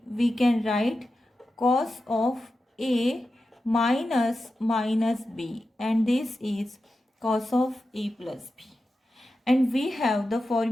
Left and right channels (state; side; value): normal; both; correlation 0.91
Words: we can write cos of A minus B, and this is cos of A plus B. And we have the